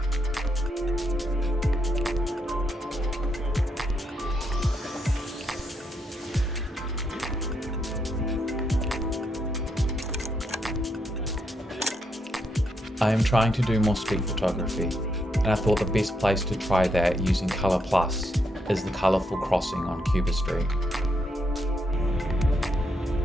I am trying to do more street photography, and I thought the best place to try that using Colour Plus is the colourful crossing on Cuba Street.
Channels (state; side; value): normal; both; correlation 0.79